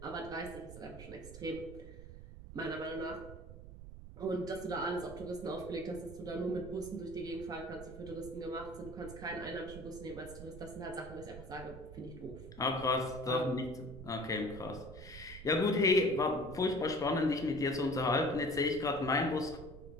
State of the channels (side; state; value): right; noise; rumble, 13 dB below the sound